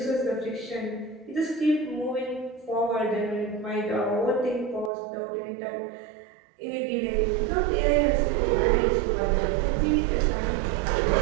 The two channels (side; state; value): left; drops out; at 4.9 s